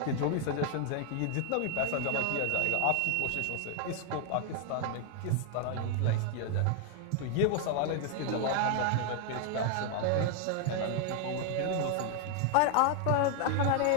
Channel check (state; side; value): different; both; correlation 0.00